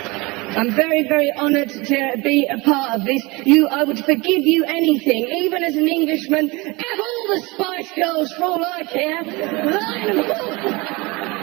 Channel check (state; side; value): quieter; left; 24.8 dB